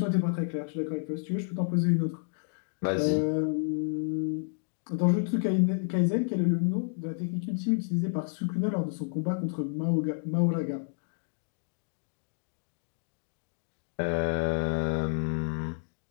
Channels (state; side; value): silent; right; digital silence